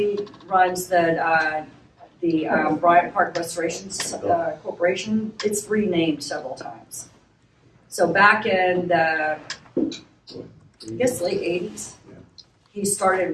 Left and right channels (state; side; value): identical; both; correlation 1.00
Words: runs the Bryant Park Restoration Corporation. It's renamed several times. So back in the, I guess, late 80s, he started